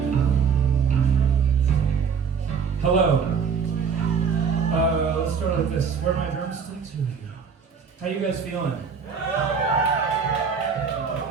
Hello. Let's start like this. Where are my drumsticks? Here we go. How you guys feeling?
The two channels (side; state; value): left; quieter; 6.2 dB